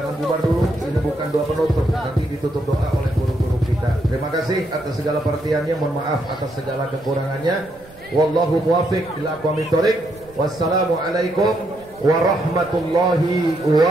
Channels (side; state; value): right; noise; rumble, 25 dB below the sound